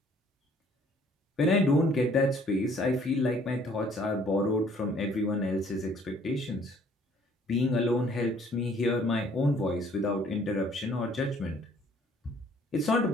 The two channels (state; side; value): normal; both; correlation 0.59